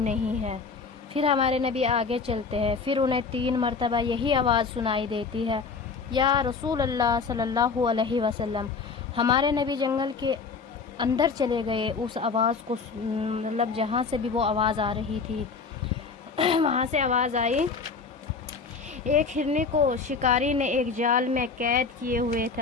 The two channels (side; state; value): right; quieter; 4.9 dB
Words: ہے۔ پھر ہمارے نبی آگے چلتے ہیں، پھر انہیں 3 مرتبہ یہی آواز سنائی دیتی ہے، یا رسول اللہ صلی اللہ علیہ وسلم۔ ہمارے نبی جنگل کے اندر چلے گئے، اس آواز کو مطلب جہاں سے بھی وہ آواز آ رہی تھی وہاں سے آواز آئی۔ ایک ہرنی کو شکاری نے ایک جال میں قید کیے ہوئے